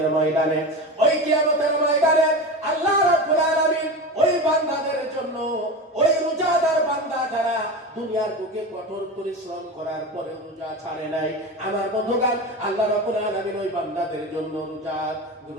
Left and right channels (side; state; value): both; normal; correlation 0.25